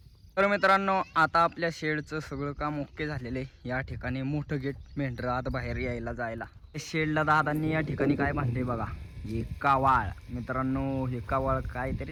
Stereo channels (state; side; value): identical; both; correlation 1.00